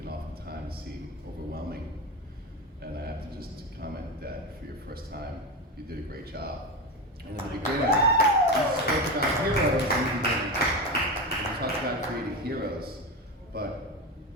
oftentimes seem overwhelming. And I have to just comment that for your first time, you did a great job. And in the beginning, you spoke about heroes in the beginning. You talked about creating heroes, but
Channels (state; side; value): normal; both; correlation 0.19